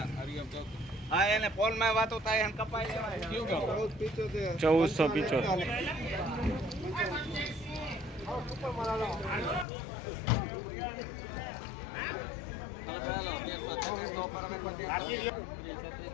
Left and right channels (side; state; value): right; drops out; at 9.7 s